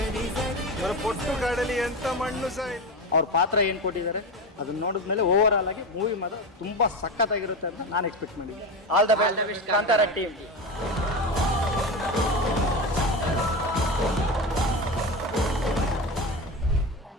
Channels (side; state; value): both; normal; correlation 0.21